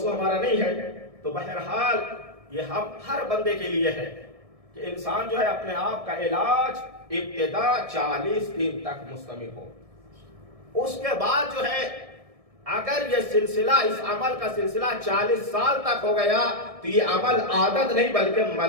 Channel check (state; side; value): late; left; 1.6 ms